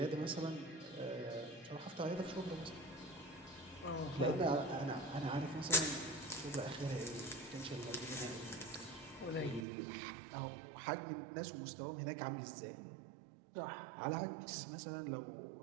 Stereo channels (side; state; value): left; drops out; at 9.7 s